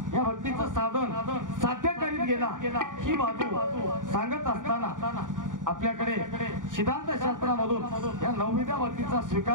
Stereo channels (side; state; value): left; late; 0.88 ms